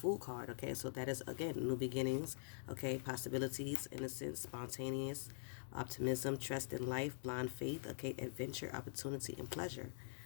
card, okay? So that is, again, new beginnings, okay? Possibilities, innocence, spontaneous, optimism, trust in life, blind faith, okay? Adventure, opportunity, and pleasure.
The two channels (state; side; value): silent; right; digital silence